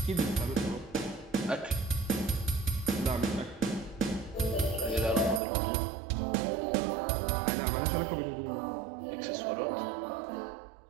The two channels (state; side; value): drops out; left; at 5.4 s